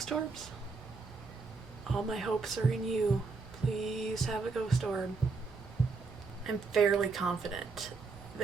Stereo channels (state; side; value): quieter; left; 4.3 dB